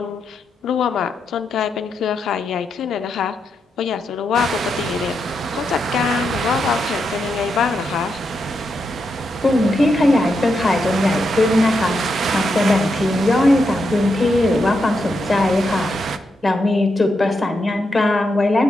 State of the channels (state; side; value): normal; both; correlation 0.83